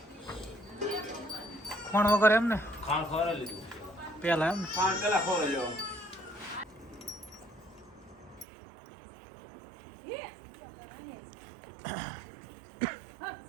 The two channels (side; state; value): left; drops out; at 8.5 s